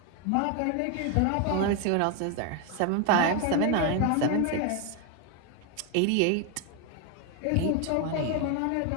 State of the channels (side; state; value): both; different; correlation 0.01